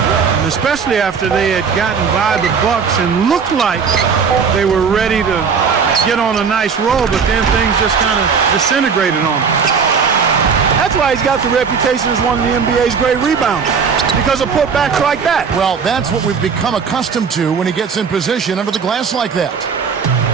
and especially after they had gotten by the Bucks and looked like they were ready to get on a nice roll, but then things just kind of disintegrated on them. That's why he's got the reputation as one of the NBA's great rebounders, because of putbacks like that. Well, that's what we've become accustomed to when he gets in position under the glass like that.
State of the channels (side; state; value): left; quieter; 6.0 dB